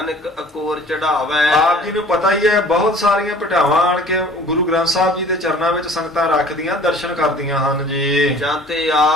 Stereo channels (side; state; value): both; normal; correlation 0.49